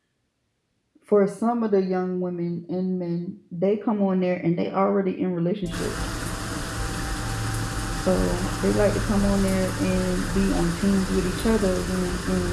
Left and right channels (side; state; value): both; identical; correlation 1.00